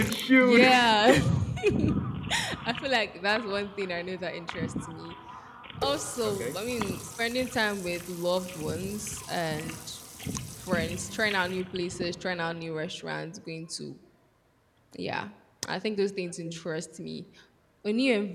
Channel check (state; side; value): identical; both; correlation 1.00